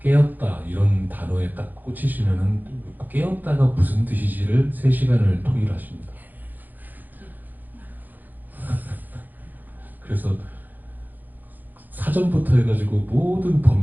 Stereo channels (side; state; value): left; late; 0.085 ms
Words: 깨었다 이런 단어에 딱 꽂히시면은 깨었다가 무슨 뜻이지를 3시간을 토의하십니다. 그래서 사전부터 해가지고 모든